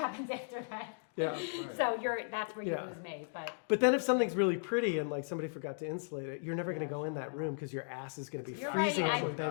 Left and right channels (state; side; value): silent; right; digital silence